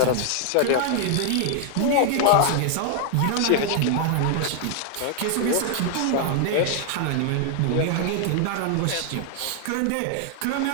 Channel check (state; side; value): different; both; correlation 0.00